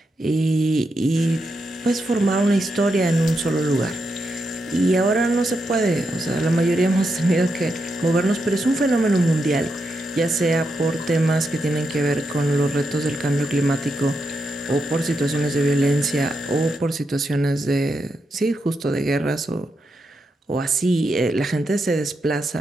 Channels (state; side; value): normal; both; correlation 0.84